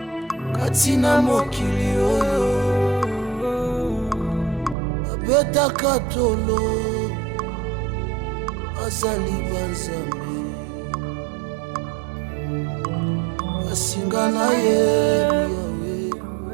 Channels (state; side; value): drops out; left; at 4.8 s